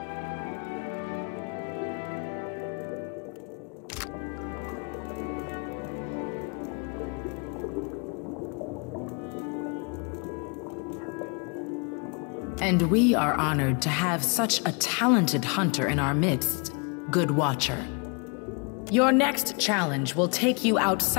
And we are honored to have such a talented hunter in our midst, Good Watcher. Your next challenge will take you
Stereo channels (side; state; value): right; quieter; 34.8 dB